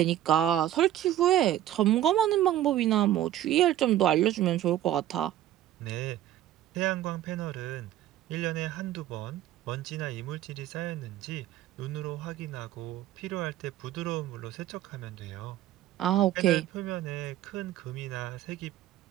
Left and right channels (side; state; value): left; quieter; 12.7 dB